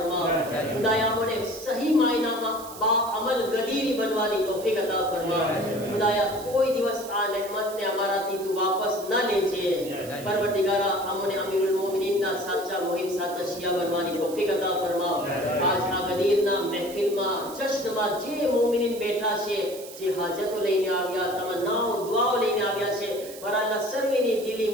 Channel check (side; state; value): right; noise; hiss, 16 dB below the sound